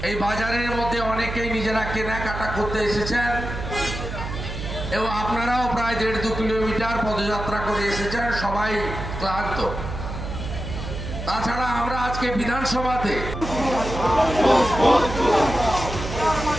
এই বাজারের মধ্যে অনেকেই নিজেরা কেনাকাটা করতে এসেছেন এবং আপনারাও প্রায় 1.5-2 কিলোমিটার পদযাত্রা করে এসেছেন, সবাই ক্লান্ত। তাছাড়া আমরা আজকে বিধানসভাতে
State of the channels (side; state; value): right; noise; hum, 7 dB below the sound